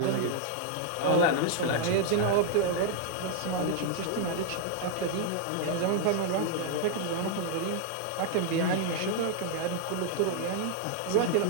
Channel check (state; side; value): different; both; correlation 0.00